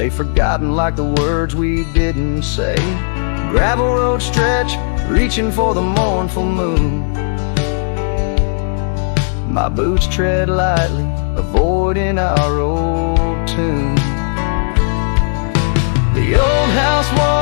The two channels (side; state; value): right; silent; 68 dB below the other